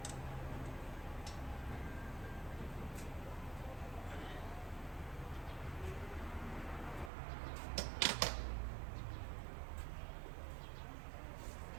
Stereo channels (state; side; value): drops out; left; at 7.1 s